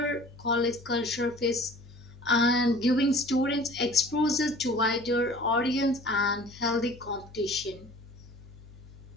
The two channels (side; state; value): left; noise; hum, 20 dB below the sound